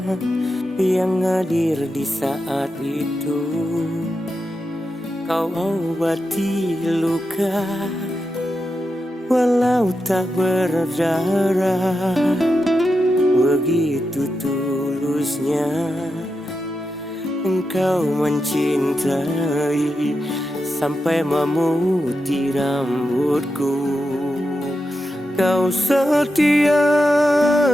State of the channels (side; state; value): both; normal; correlation 0.88